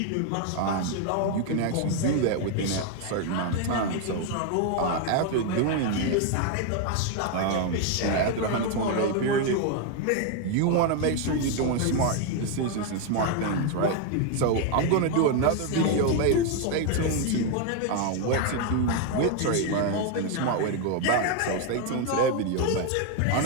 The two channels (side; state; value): both; different; correlation 0.01